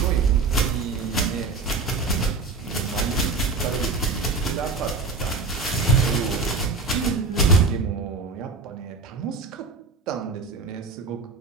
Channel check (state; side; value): quieter; left; 4.0 dB